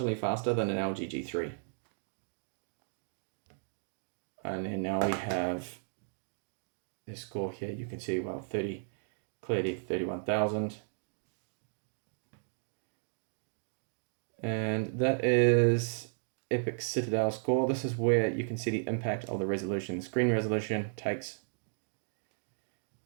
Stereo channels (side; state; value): left; silent; digital silence